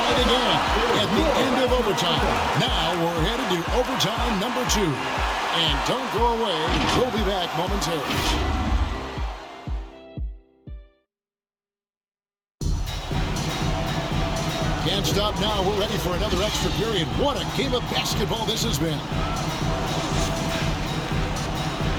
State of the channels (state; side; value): identical; both; correlation 1.00